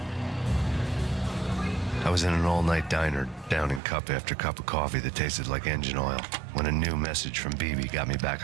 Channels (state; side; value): drops out; left; at 3.8 s